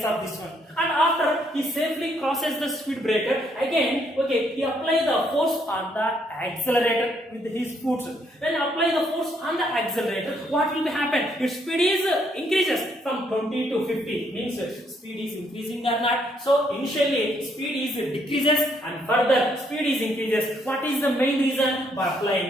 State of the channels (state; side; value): normal; both; correlation 0.71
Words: of this one. And after he safely crosses the speed breaker, again, okay, he apply the force on the accelerator with his foot. When he apply the force on the accelerator, what will be happen? Its speed is increases from 20 to 50. Means speed is increasing or not. So initially speed is decreases and further speed is increases. What is the main reason? By